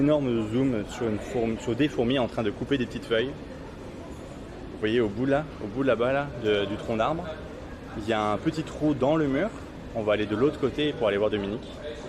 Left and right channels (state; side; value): identical; both; correlation 1.00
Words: zoom sur des fourmis en train de couper des petites feuilles. Vous voyez au bout là-bas là, du tronc d'arbre, il y a un petit trou dans le mur. On va aller de l'autre côté pour aller voir Dominique.